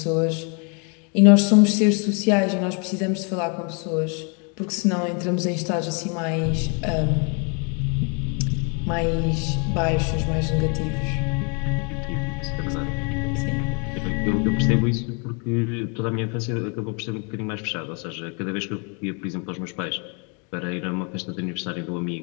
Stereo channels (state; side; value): quieter; right; 36.3 dB